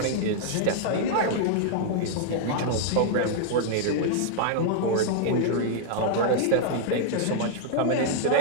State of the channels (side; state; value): both; different; correlation -0.01